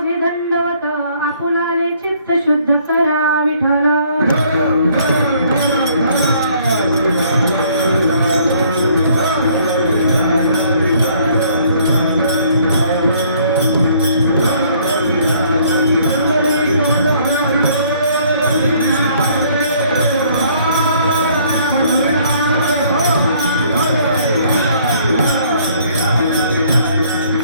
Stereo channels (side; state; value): both; inverted; correlation -0.62